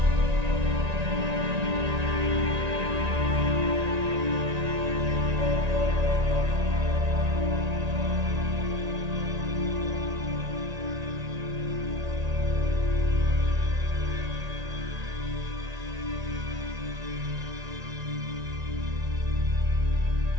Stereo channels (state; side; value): late; left; 1.9 ms